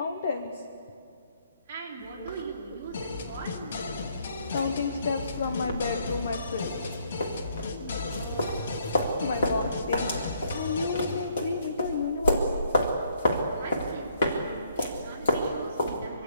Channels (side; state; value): both; inverted; correlation -0.68